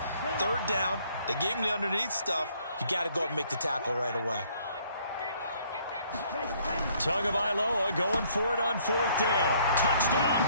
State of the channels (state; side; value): inverted; both; correlation -0.63